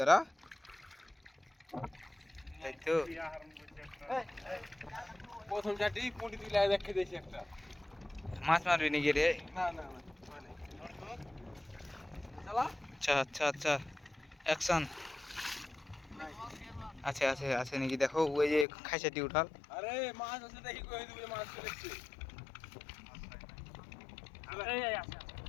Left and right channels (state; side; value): drops out; right; at 18.7 s